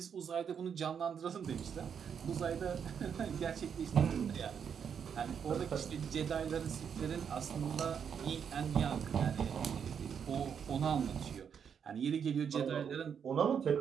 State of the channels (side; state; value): left; quieter; 7.4 dB